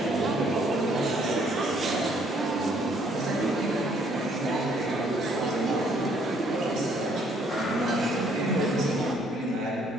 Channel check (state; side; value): normal; both; correlation 0.65